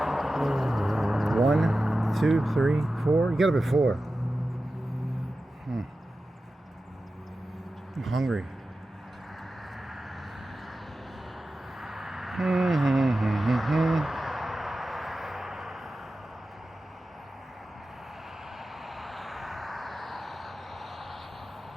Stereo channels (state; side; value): normal; both; correlation 0.93